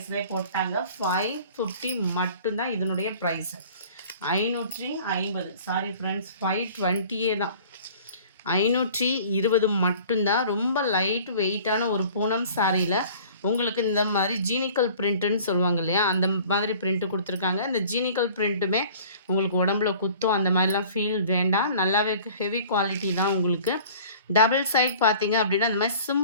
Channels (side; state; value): both; inverted; correlation -0.47